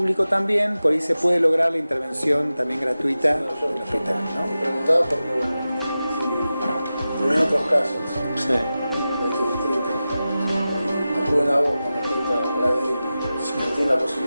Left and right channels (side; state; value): both; inverted; correlation -0.94